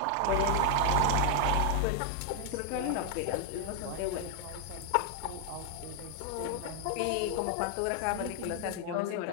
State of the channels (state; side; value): different; both; correlation 0.00